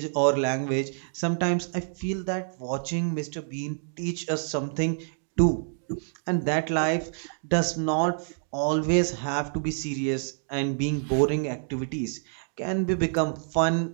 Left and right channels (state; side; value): silent; left; digital silence